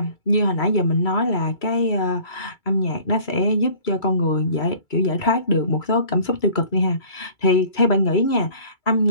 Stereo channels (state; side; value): late; right; 2.3 ms